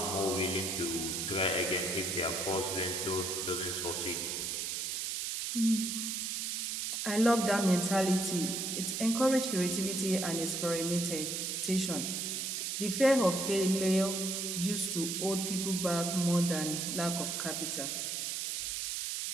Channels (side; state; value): right; noise; hiss, 2 dB below the sound